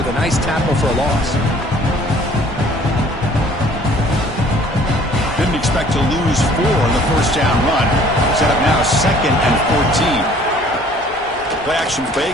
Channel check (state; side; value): normal; both; correlation 0.54